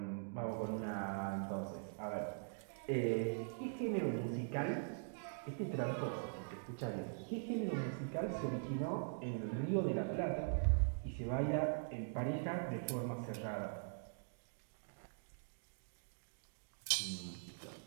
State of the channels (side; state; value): left; silent; digital silence